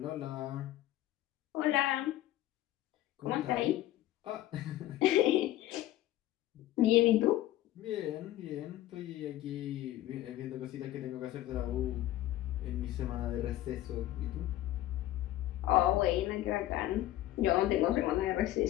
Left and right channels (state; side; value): quieter; right; 14.5 dB